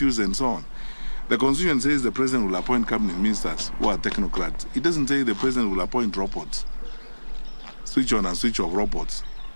and so on. The Constitution says the President will appoint cabinet ministers who are technocrats. It doesn't say the President will appoint robots, switch on and switch off robots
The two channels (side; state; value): both; inverted; correlation -1.00